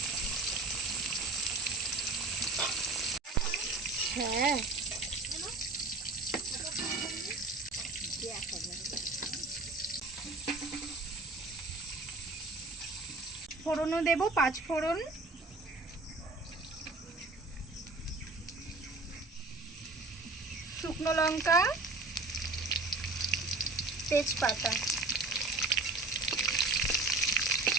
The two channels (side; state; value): left; quieter; 3.6 dB